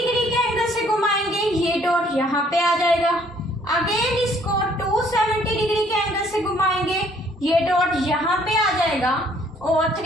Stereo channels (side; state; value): both; normal; correlation 0.62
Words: के एंगल से घुमाएंगे ये डॉट यहाँ पे आ जाएगा। अगेन इसको 270 डिग्री के एंगल से घुमाएंगे ये डॉट यहाँ पे आ जाएगा और